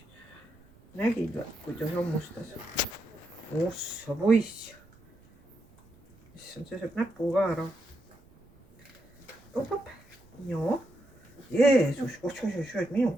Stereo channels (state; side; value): noise; right; rumble, 27 dB below the sound